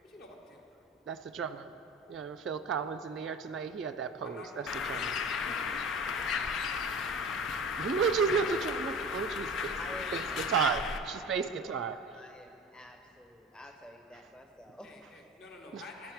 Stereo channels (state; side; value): normal; both; correlation 0.35